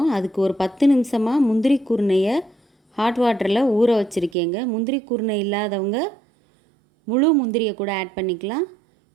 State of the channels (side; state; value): left; drops out; at 4.4 s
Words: அதுக்கு ஒரு 10 நிமிஷமாக முந்திரி குருணையை ஹாட் வாட்டரில் ஊற வச்சுருக்கேங்க. முந்திரி குருணை இல்லாதவங்க முழு முந்திரியை கூட ஆட் பண்ணிக்கலாம்.